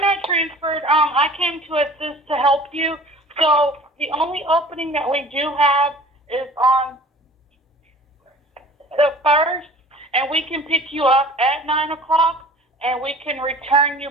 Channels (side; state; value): both; normal; correlation 0.45